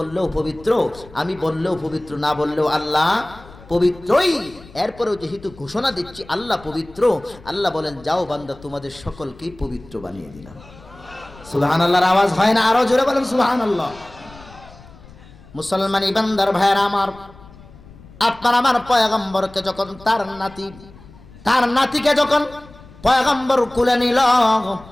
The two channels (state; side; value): noise; left; rumble, 22 dB below the sound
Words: পবিত্র, আমি বললেও পবিত্র, না বললেও আল্লাহ পবিত্রই। এরপরেও যেহেতু ঘোষণা দিচ্ছি আল্লাহ পবিত্র, আল্লাহ বলেন, যাও বান্দা, তোমাদের সকলকেই পবিত্র বানিয়ে দিলাম। সুবহানাল্লাহর আওয়াজ হয় না? আরো জোরে বলেন সুবহানাল্লাহ। মুসলমান ইমানদার ভাইয়েরা আমার, আপনার আমার পয়গম্বরকে যখন তার নাতিকে যখন পয়গম্বর কুলে নিল,